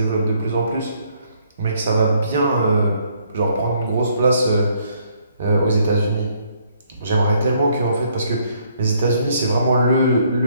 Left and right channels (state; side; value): inverted; both; correlation -0.68